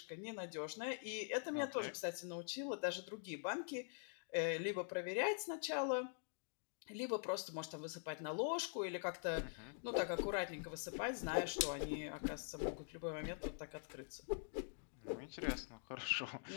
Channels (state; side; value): silent; right; digital silence